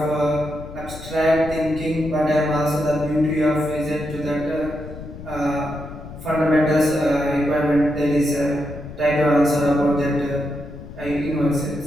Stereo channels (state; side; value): noise; left; rumble, 13 dB below the sound